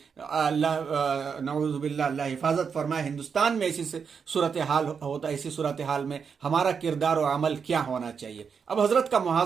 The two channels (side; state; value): left; quieter; 6.3 dB